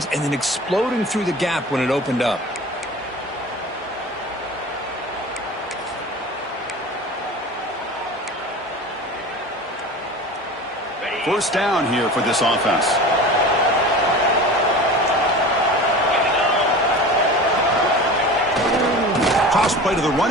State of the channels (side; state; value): both; normal; correlation 0.35